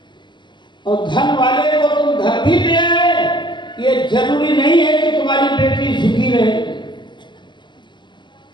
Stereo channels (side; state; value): right; late; 0.22 ms